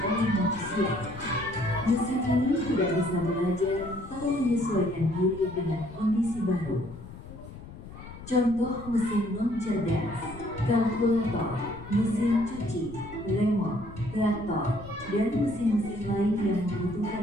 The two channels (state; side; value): noise; left; rumble, 15 dB below the sound